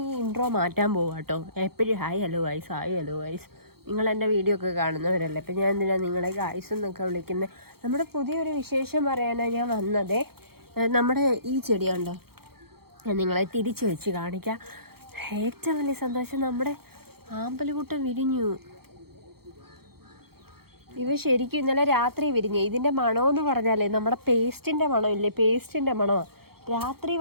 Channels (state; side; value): late; left; 0.95 ms